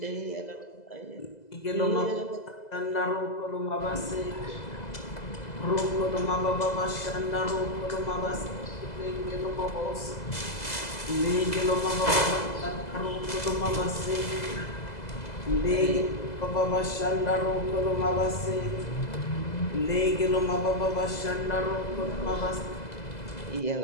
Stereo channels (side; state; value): right; late; 2.0 ms